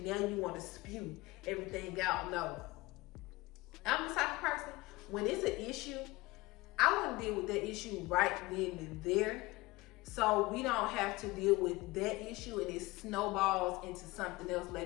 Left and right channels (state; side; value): quieter; right; 21.1 dB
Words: now you want to spew everything out. No. I'm the type of person, when it's an issue, I want to deal with that issue right then and there, so we don't have to deal with that issue and it snowballs into something else